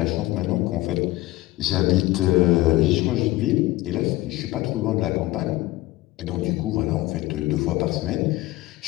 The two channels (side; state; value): right; quieter; 17.9 dB